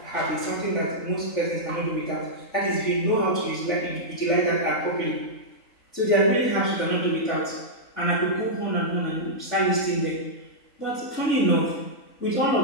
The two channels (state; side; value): late; right; 3.8 ms